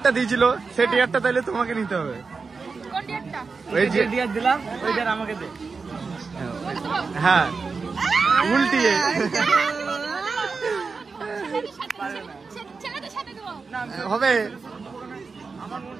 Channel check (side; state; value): left; quieter; 4.6 dB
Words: দিয়েছিল সেই ডিয়ারটা তাইলে তোমাকে নিতে হবে। কোন ডেটটা? ওই যে ডিয়ার দিলাম, ওই ডিয়ার আমাকে দে। হ্যাঁ উল্টিয়ে ছেলেদের সাথে দেবো। হবে।